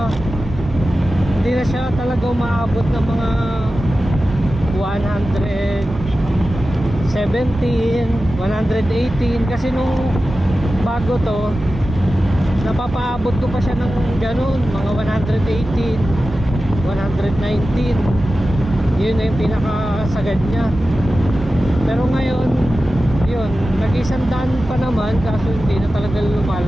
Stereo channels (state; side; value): normal; both; correlation 0.94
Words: na siya talaga umaabot ng mga 117, 118, kasi nung bago to napapaabot ko pa siya ng ganun, mga 118, 119. Yun na yung pinakasagad niya. Pero ngayon, yun, nag-isandaan pa naman, kaso hindi na talaga